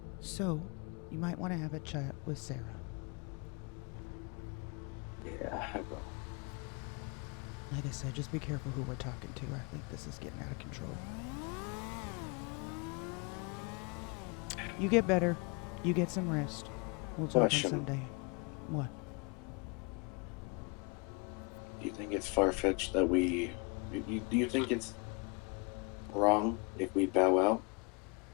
So, you might want to have a chat with Sarah. Yeah, I will. Like I said, just be careful who we're talking to. I think this is getting out of control. You get better. You get some rest. We'll talk on Sunday. What? Do you think it's far-fetched that we... Do you think it's wrong if we bow out?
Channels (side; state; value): right; quieter; 31.7 dB